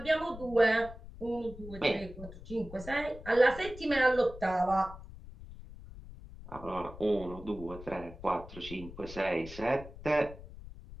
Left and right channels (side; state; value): left; noise; rumble, 14 dB below the sound